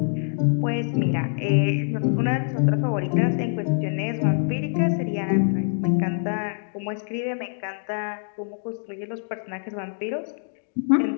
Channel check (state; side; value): silent; right; digital silence